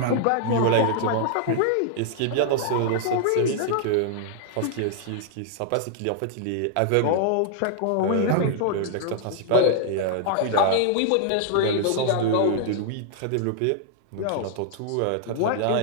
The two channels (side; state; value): both; different; correlation -0.01